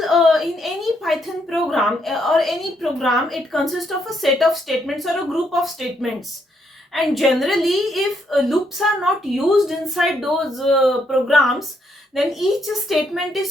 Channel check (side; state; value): both; normal; correlation 0.75